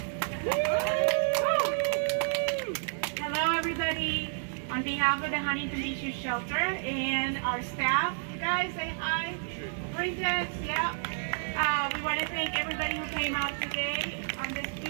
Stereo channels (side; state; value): left; silent; digital silence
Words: Hello, everybody. On behalf of the Huntington Beach Youth Shelter and our staff, you guys say hi. Princess, yeah. We want to thank everybody who came out today on this